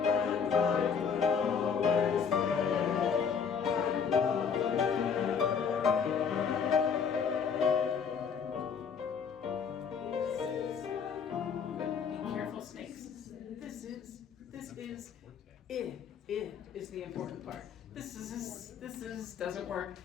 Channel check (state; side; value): quieter; right; 6.5 dB